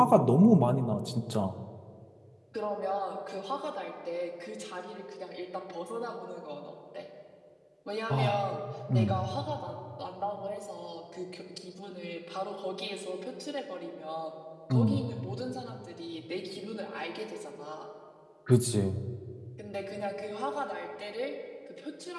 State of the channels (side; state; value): both; identical; correlation 1.00